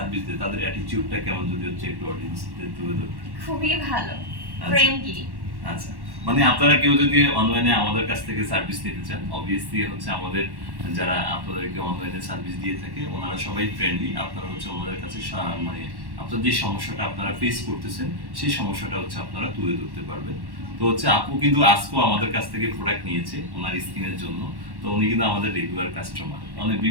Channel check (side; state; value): left; late; 1.1 ms